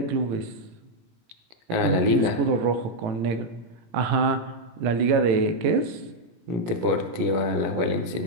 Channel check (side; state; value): left; late; 17 ms